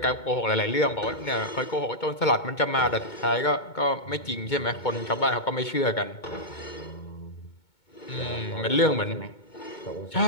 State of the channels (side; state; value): right; late; 2.2 ms